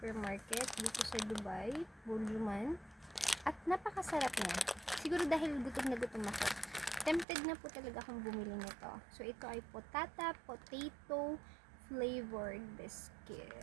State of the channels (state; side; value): drops out; left; at 7.2 s